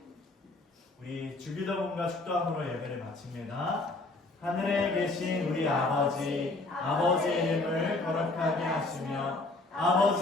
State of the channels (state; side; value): quieter; right; 3.1 dB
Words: 우리 주기도문과 축도함으로 예배를 마칩니다. 하늘에 계신 우리 아버지, 아버지의 이름을 거룩하게 하시며